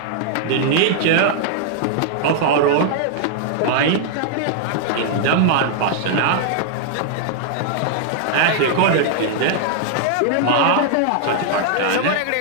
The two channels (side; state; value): both; different; correlation -0.01